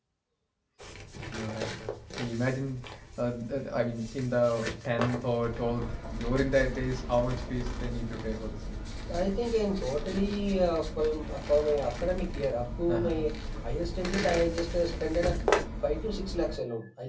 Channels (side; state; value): both; identical; correlation 1.00